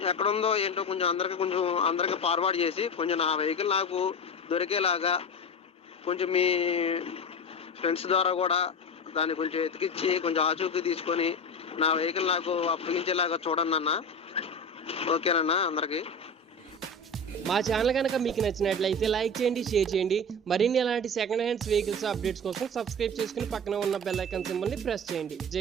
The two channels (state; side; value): normal; both; correlation 0.25